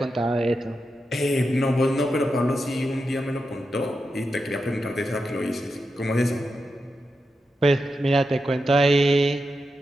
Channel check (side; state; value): both; normal; correlation 0.88